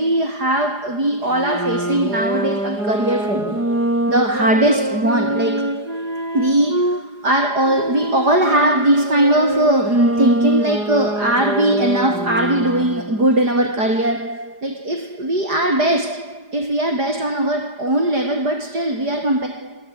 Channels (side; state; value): left; late; 4.9 ms